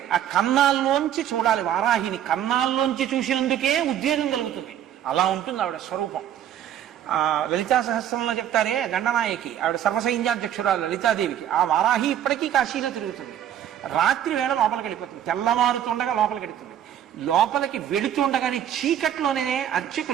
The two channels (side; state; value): left; quieter; 10.5 dB